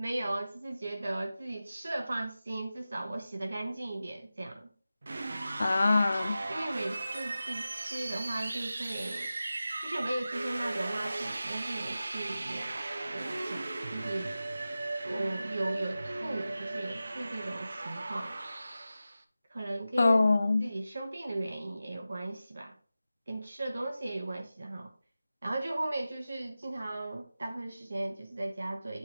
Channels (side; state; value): both; inverted; correlation -0.94